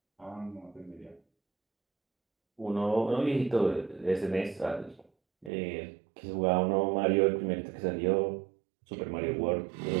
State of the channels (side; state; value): left; drops out; at 5.5 s